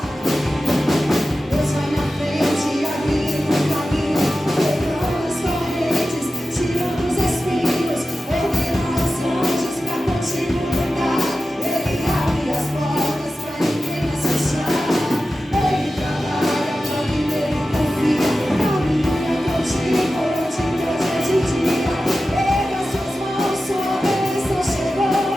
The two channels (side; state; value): both; normal; correlation 0.93